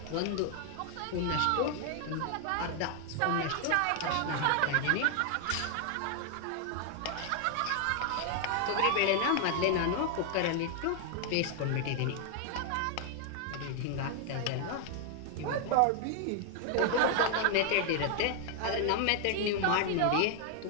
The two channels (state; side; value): different; both; correlation 0.00